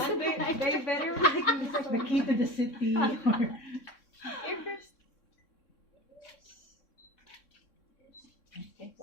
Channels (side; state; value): right; late; 3.6 ms